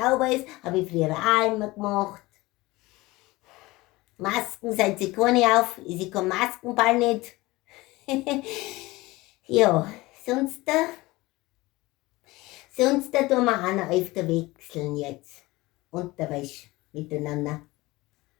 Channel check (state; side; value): quieter; right; 20.6 dB